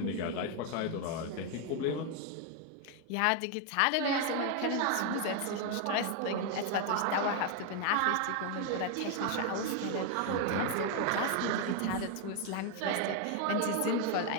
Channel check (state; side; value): different; both; correlation 0.01